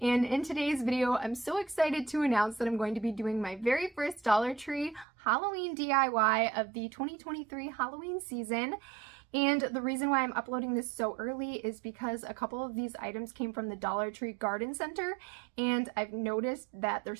and in today's video, I'm so excited to announce that I'm going to be doing my very first Dollar Tree Halloween DIY of the 2023 Halloween season. And the reason why I'm uploading this so early is because a couple of these items came from the Dollar Tree Garden Center, and I've noticed that their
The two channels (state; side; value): drops out; left; at 5.1 s